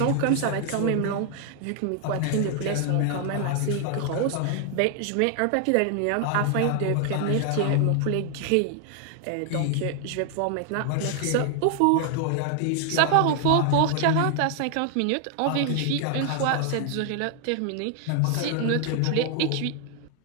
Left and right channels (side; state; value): both; different; correlation 0.00